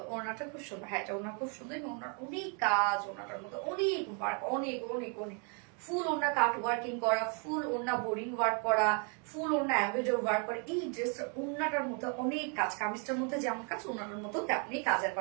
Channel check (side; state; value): left; quieter; 38.3 dB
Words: ওনাটা খুব সুন্দর, হ্যাঁ এটা ওনা খুব সুন্দর এবং ওনার অনেক কাজ, ওনাটার মধ্যে অনেক ওয়ার্ক, অনেক অনেক অনেক ফুল ওনা কাট ওয়ার্কিং করা, ফুল ওনা বোরিং ওয়ার্ক করা, ফুল ওনা এমব্রয়ডারি ওয়ার্ক করা। এই ড্রেসটা ওনাটার মধ্যে অনেক কাজ, কামিজটার মধ্যে যেমন কাজ ওনাটার মধ্যে তেমনি কাজের